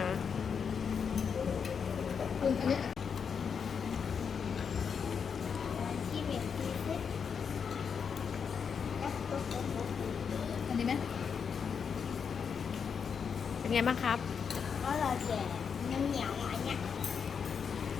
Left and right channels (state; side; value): quieter; right; 6.5 dB